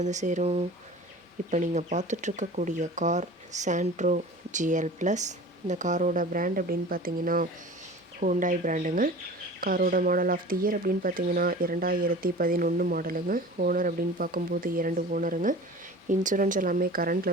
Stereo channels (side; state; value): both; normal; correlation 0.39